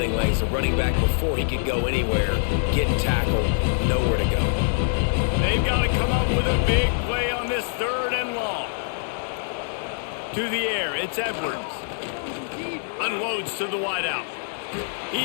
lanes. The running back, before he could go anywhere, getting tackled, nowhere to go. They've got to come up with a big play on this 3rd and long. To the air, it's Edwards. Unloads to the wideout.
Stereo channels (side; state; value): right; silent; 62 dB below the other